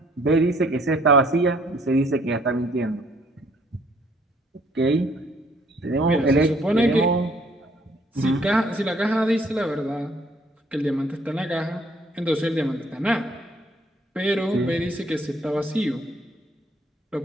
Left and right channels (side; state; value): both; normal; correlation 0.62